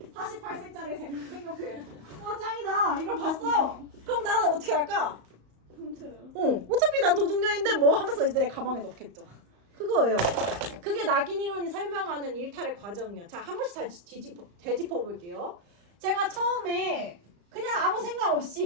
48색짜리 색연필. 와 짱이다. 이걸 봤어요. 그럼 나는 어떻게 할까? 훔쳐요. 어차피 난 도둑년인데 뭐 하면서 이제 내 가방에 넣겠죠. 그거예요. 그게 낙인 이론이 설명하는 일탈의 과정이야. 자, 한 번씩 다시 되짚어 볼게요. 제가 처음에 그냥 아무 생각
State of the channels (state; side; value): late; left; 34 ms